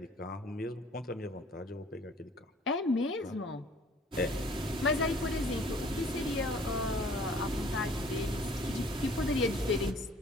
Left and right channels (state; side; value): normal; both; correlation 0.54